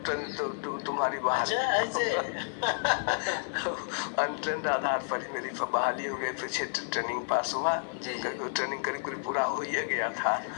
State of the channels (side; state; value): right; silent; digital silence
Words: तुम्हारी बहाली? अनट्रेंड आधार पर ही मेरी बहाली हो गई। फिर ट्रेनिंग पास हुआ। ट्रेनिंग करीब पूरा हो ही गया था।